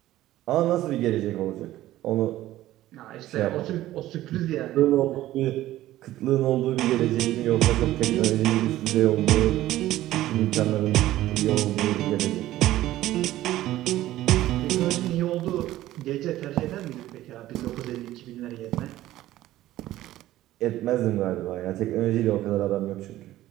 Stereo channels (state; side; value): quieter; left; 14.9 dB